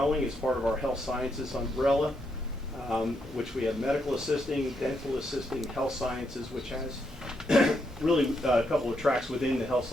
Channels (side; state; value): both; normal; correlation 0.79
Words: as part of our health sciences umbrella, which we have medical assisting, dental assisting, health sciences, which has really a couple of tracks within the health